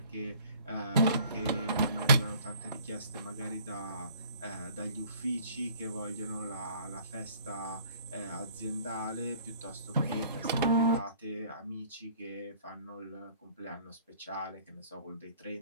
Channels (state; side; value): inverted; both; correlation -0.54